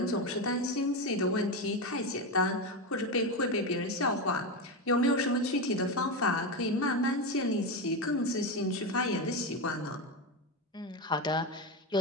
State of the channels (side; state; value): both; normal; correlation 0.14